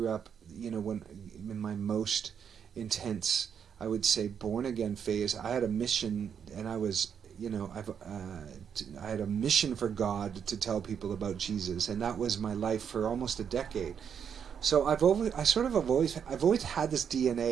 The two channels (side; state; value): left; quieter; 7.6 dB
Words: up, when in my most intense, I would say, born again phase. I had a mission, and I was, I had a mission for God to tell people about Jesus, and that was my life for almost a decade. So I've always had this